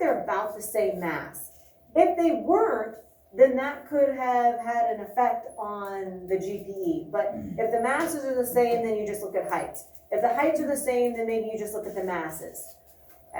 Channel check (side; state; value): both; identical; correlation 1.00